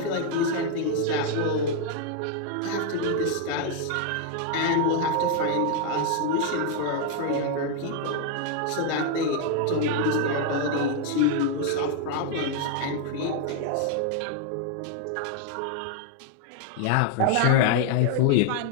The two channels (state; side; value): different; both; correlation 0.00